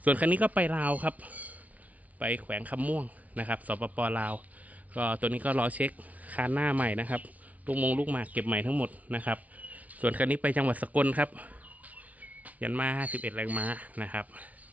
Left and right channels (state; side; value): late; left; 0.071 ms